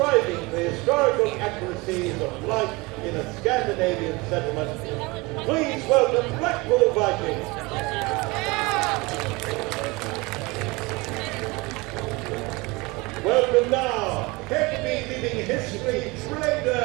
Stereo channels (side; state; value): left; quieter; 24.3 dB